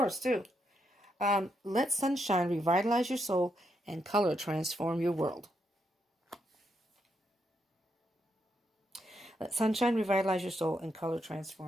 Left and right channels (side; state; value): both; normal; correlation 0.80